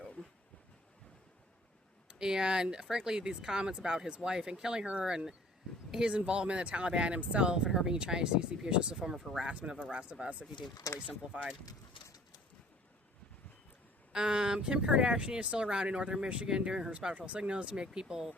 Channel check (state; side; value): normal; both; correlation 0.54